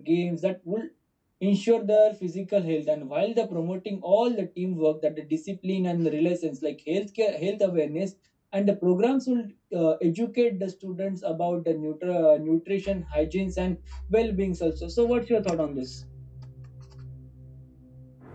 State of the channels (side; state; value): both; identical; correlation 1.00